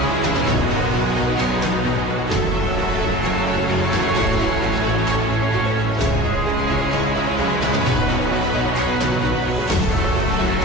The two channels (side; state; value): both; normal; correlation 0.40